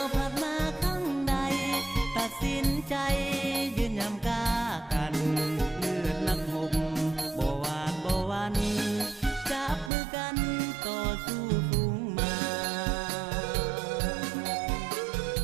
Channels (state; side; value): drops out; left; at 9.9 s